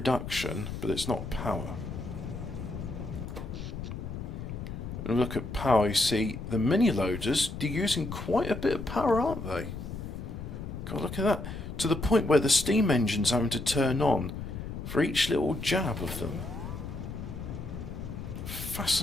but it's not power. And look at power, you see the mini loaders, they're using quite a bit of power, aren't they? God, look at that. To the point where the steam engine's having to turn on for each little jab of them.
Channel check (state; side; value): noise; left; rumble, 7 dB below the sound